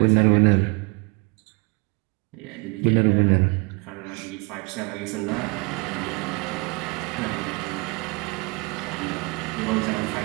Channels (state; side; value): quieter; left; 29.3 dB